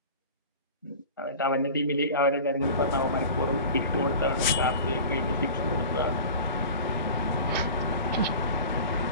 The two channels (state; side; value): inverted; both; correlation -0.37